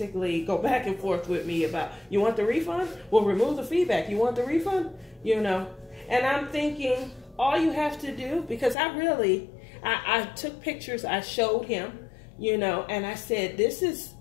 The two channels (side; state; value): right; drops out; at 8.8 s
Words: go back and forth with me about, you want the refund? Well, remove the feedback. You want the refund? And I'm thinking, all you have to do, because I took pictures, I showed him, and I said, this is